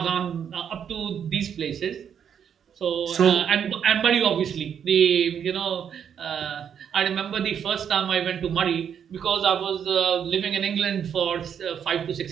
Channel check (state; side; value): quieter; left; 8.2 dB